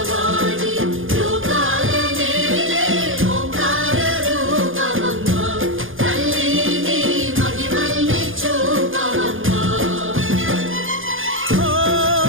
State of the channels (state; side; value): late; left; 0.58 ms